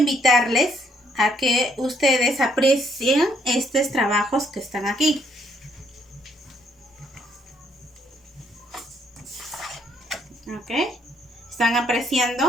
a que ustedes aprecien estos trabajos que están aquí. ¿Ok? ¿Están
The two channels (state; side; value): normal; both; correlation 0.69